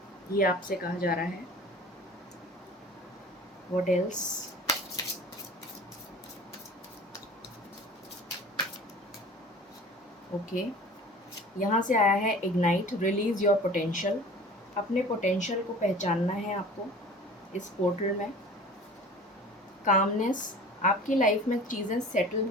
ये आपसे कहा जा रहा है। What else? ओके, यहाँ से आया है इग्नाइट, रिलीज़ योर पोटेंशियल। अपने पोटेंशियल को पहचानना है आपको इस पोर्टल में। कामनेस, आपकी लाइफ में चीज़ें सेटल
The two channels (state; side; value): normal; both; correlation 0.42